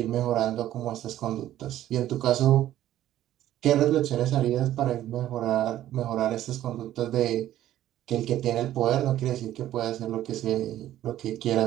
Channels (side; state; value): left; quieter; 13.0 dB